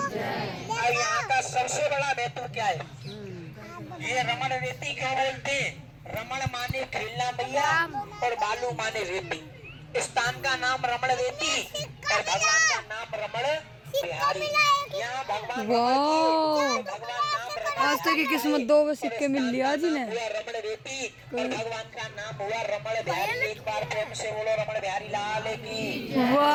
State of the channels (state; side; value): identical; both; correlation 1.00